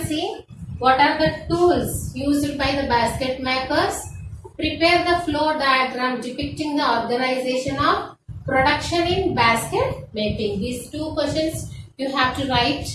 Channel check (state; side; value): identical; both; correlation 1.00